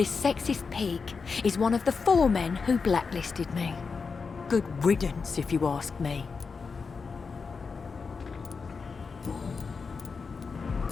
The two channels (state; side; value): quieter; right; 5.0 dB